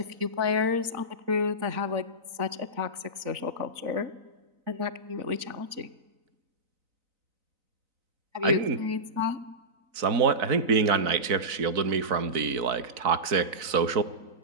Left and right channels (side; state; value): left; late; 3.9 ms